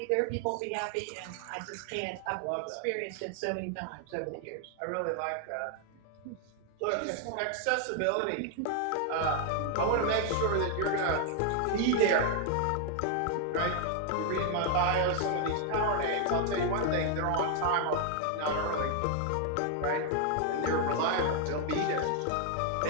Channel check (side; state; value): both; different; correlation 0.00